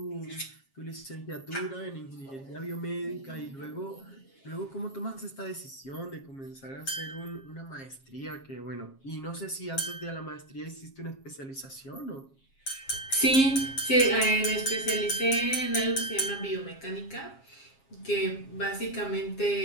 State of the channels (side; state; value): right; late; 7.4 ms